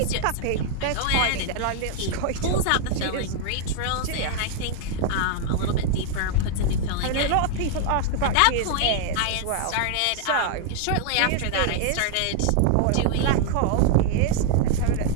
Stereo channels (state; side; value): different; both; correlation 0.00